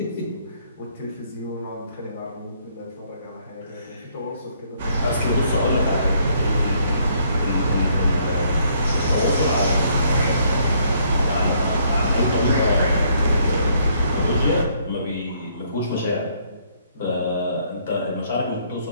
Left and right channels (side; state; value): both; inverted; correlation -0.68